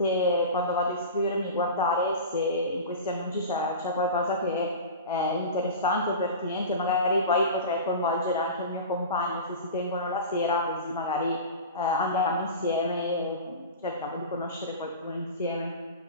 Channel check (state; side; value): inverted; both; correlation -0.31